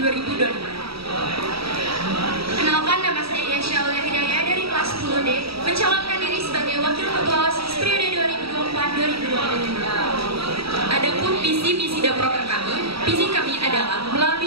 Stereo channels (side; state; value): left; late; 0.76 ms